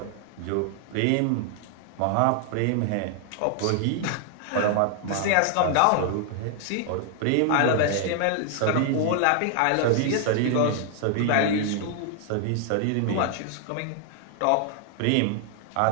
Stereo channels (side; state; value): both; different; correlation 0.00